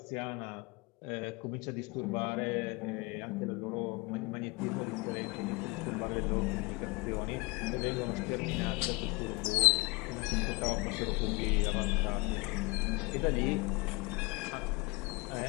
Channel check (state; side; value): quieter; right; 25.0 dB